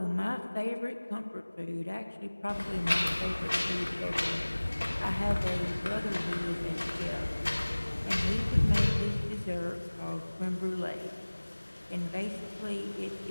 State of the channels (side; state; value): both; inverted; correlation -1.00